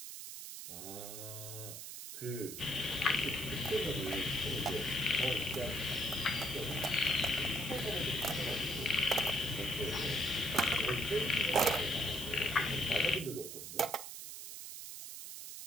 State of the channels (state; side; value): noise; right; hiss, 9 dB below the sound